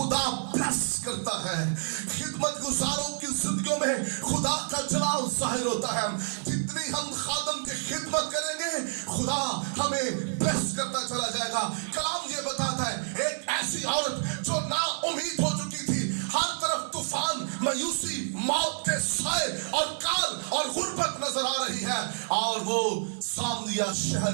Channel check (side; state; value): left; silent; 59 dB below the other